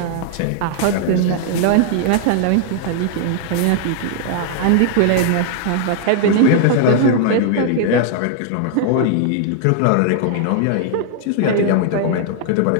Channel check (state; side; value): different; both; correlation -0.01